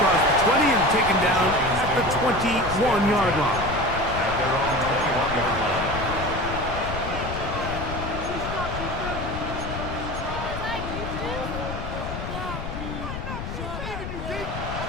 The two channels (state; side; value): noise; left; rumble, 6 dB below the sound